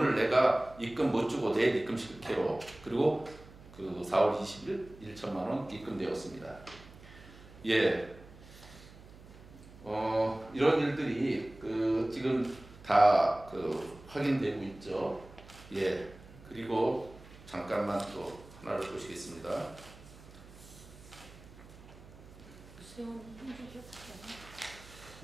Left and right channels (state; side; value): noise; right; hum, 20 dB below the sound